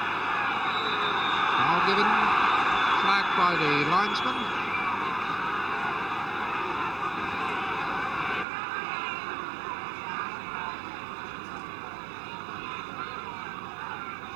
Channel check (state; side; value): drops out; left; at 8.5 s